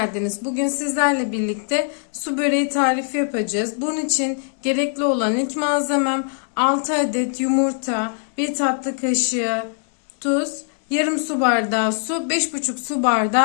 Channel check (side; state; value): right; silent; 65 dB below the other